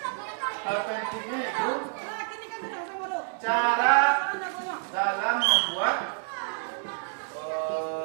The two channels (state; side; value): silent; left; digital silence